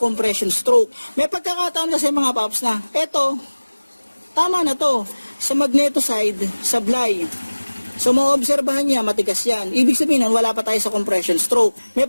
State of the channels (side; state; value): both; inverted; correlation -1.00